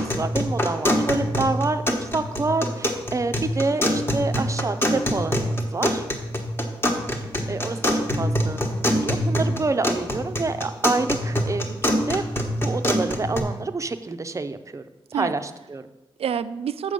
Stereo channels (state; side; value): normal; both; correlation 0.72